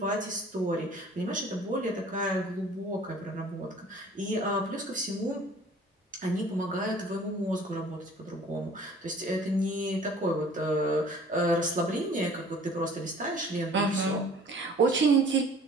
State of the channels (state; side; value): normal; both; correlation 0.50